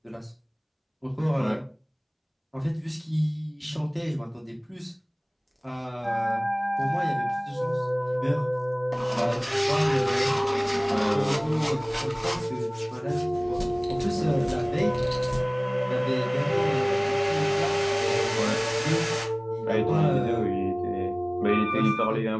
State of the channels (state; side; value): identical; both; correlation 1.00